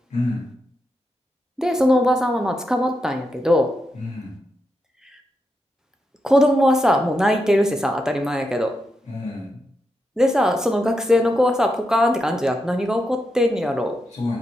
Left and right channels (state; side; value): normal; both; correlation 0.85